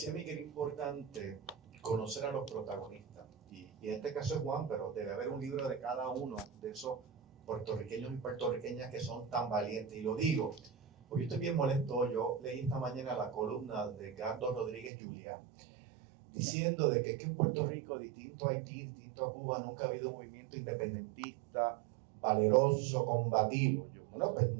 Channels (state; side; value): drops out; left; at 14.9 s